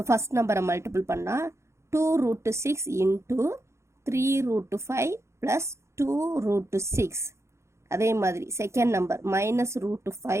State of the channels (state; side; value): late; left; 0.14 ms